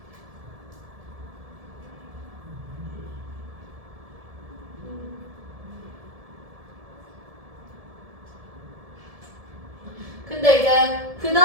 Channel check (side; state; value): left; late; 1.7 ms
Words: 근데 이제 그